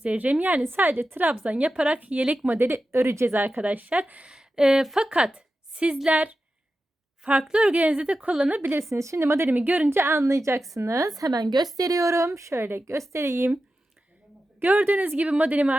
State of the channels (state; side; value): normal; both; correlation 0.92